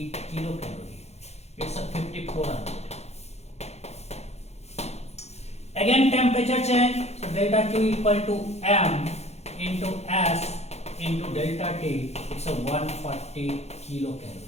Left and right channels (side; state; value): right; late; 0.31 ms